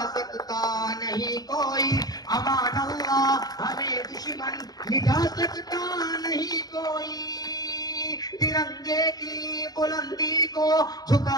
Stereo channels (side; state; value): right; late; 0.19 ms